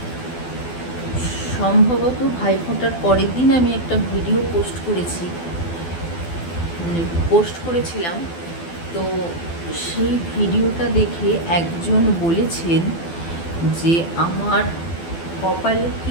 সম্ভবত ভাইফোঁটার পরের দিন আমি একটা ভিডিও পোস্ট করেছিলাম। তো সেই ভিডিওটা দেখে একজন বলেছেন যে আমার কপালে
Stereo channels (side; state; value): right; late; 12 ms